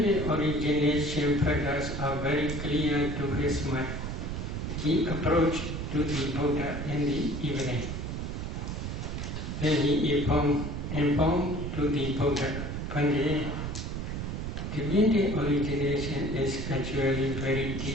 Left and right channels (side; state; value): right; noise; rumble, 4 dB below the sound